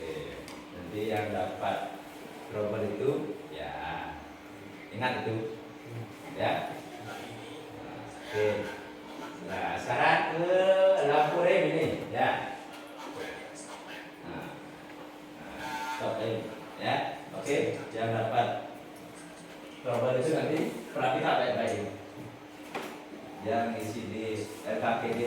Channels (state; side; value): identical; both; correlation 1.00